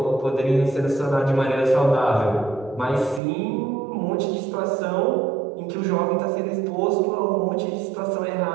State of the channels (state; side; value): drops out; left; at 3.2 s